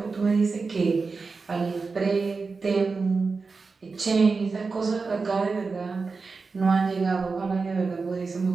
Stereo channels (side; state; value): left; quieter; 4.4 dB